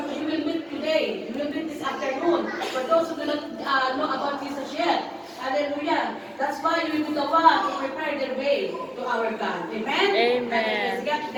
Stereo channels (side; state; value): both; identical; correlation 1.00